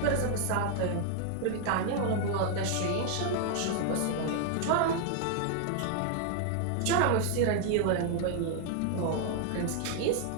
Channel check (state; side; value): different; both; correlation 0.00